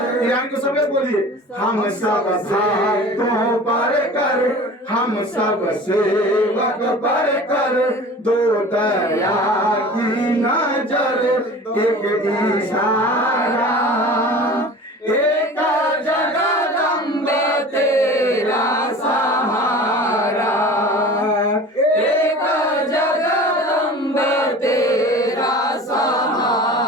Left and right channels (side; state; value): both; normal; correlation 0.40